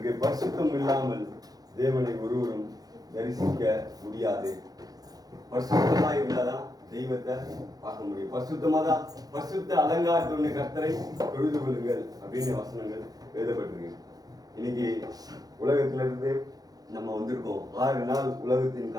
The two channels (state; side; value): late; left; 0.18 ms